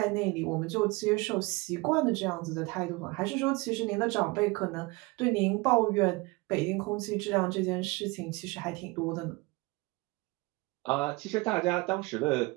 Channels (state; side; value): quieter; left; 24.7 dB